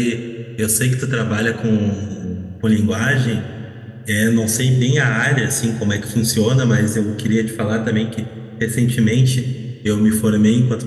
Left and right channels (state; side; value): identical; both; correlation 1.00